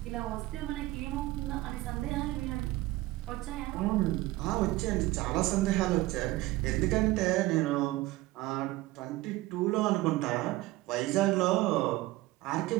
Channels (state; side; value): quieter; left; 18.6 dB